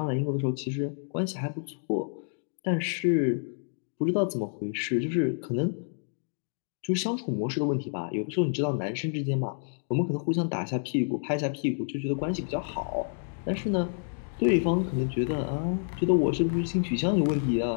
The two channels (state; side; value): silent; right; digital silence